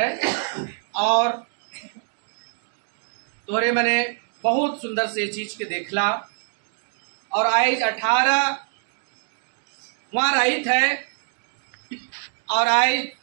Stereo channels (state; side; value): silent; left; digital silence